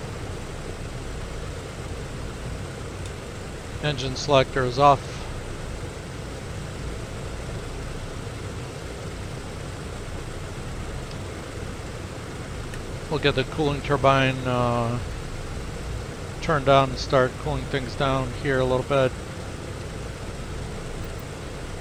Engine selector is off. We'll get the cooling turbine turned on and start cooling things down here a little bit.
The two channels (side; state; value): both; identical; correlation 1.00